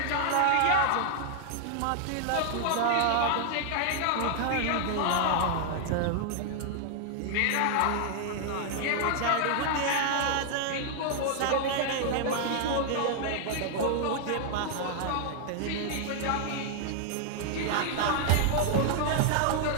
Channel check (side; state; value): both; different; correlation 0.00